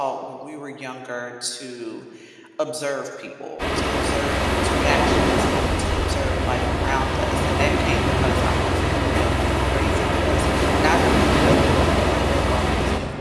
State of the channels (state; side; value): identical; both; correlation 1.00